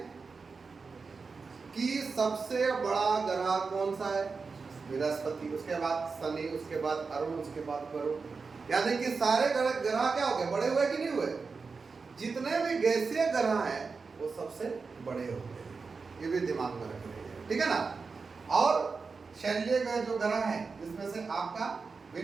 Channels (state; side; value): quieter; left; 4.7 dB